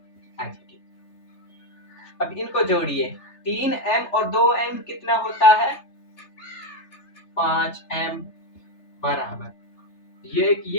एज। अब इनको जोड़िए, 3m और 2m कितना होता है, 5m बराबर, ये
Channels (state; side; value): late; right; 3.3 ms